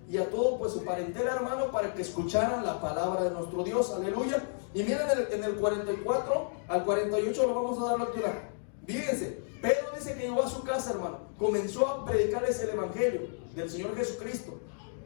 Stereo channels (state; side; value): silent; right; digital silence